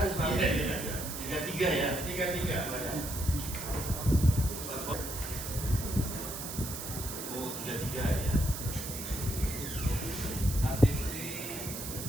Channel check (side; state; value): right; noise; hiss, 7 dB below the sound